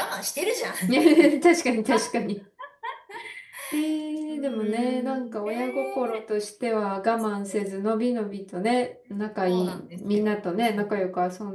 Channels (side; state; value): both; identical; correlation 1.00